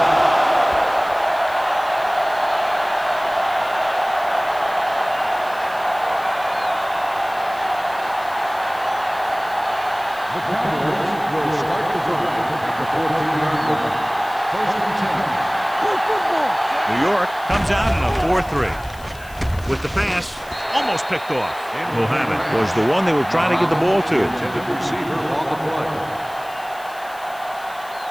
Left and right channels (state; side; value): noise; left; hiss, 21 dB below the sound